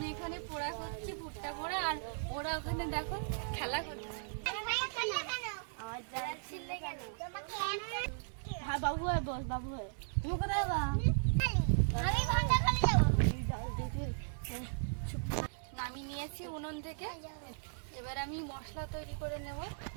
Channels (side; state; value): left; silent; digital silence